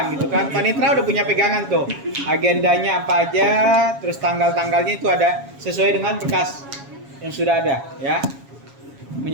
gitu kan. Panitra udah punya pegangan tuh. Agendanya apa aja, terus tanggal-tanggalnya itu ada sesuai dengan berkas yang sudah ada ya.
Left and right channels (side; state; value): left; late; 7.3 ms